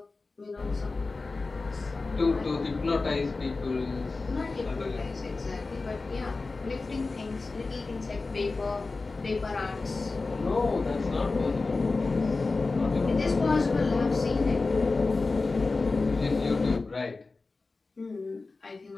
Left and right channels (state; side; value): quieter; right; 3.7 dB